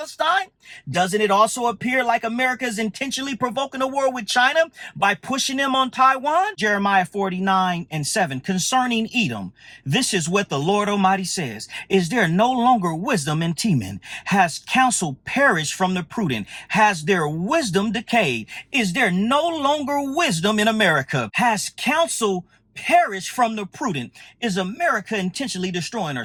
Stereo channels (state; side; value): identical; both; correlation 1.00